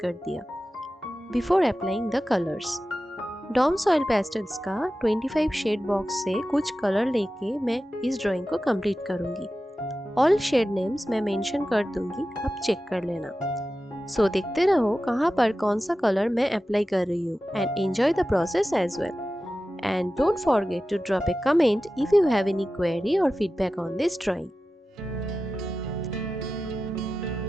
दिया before applying the colours. Doms oil pastels का 25 शेड बॉक्स से कुछ कलर लेके मैं इस ड्राइंग को कंप्लीट करूंगी। ऑल शेड नेम्स मैं मेंशन कर दूंगी, अब चेक कर लेना। सो देखते रहो कहाँ पर कौन सा कलर मैं अप्लाई कर रही हूँ and enjoy the process as well. And don't forget to drop a comment if you have any query और feedback on this drawing.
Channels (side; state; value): both; normal; correlation 0.94